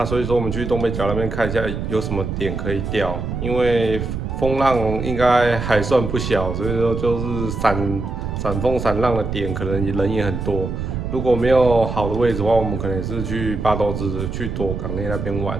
所以说我们去东北角那边看一下有什么点可以钓，因为风浪应该还算不小，所以说就是闪风闪浪的点可能人也很多。如果没有好的位置的话，我们可能也是去八斗子、去躲港内那边玩。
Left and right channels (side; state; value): right; noise; rumble, 4 dB below the sound